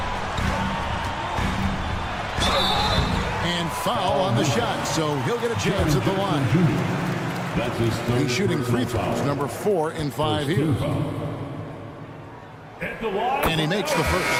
And foul on the shot, so he'll get a chance at the line. He's shooting free throws, number 4 in 5 here. And he makes the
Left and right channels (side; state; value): both; identical; correlation 1.00